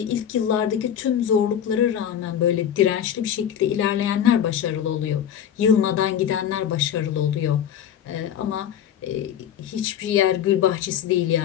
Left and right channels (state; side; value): quieter; right; 9.5 dB